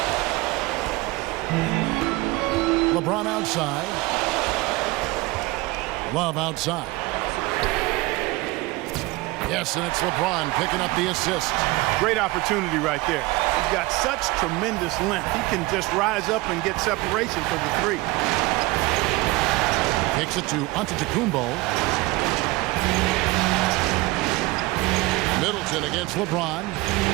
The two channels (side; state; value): left; quieter; 21.5 dB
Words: LeBron outside. Love outside. Yes, and it's LeBron picking up the assist. Great opportunity right there. He's got such tremendous length. He can just rise up and get separation for the 3. Kicks it to Antetokounmpo. Middleton against LeBron.